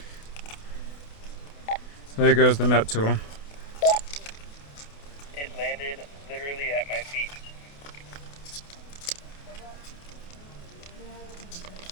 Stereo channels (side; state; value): right; late; 28 ms